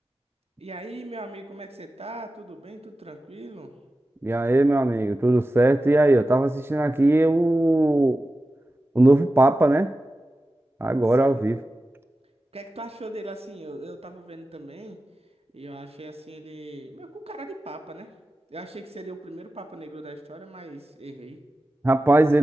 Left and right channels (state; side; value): normal; both; correlation 0.94